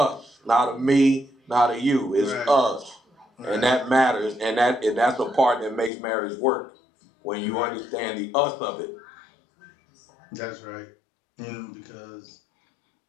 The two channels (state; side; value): drops out; right; at 5.9 s